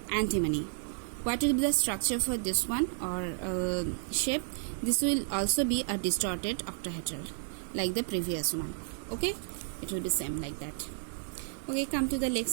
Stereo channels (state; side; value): silent; left; 56 dB below the other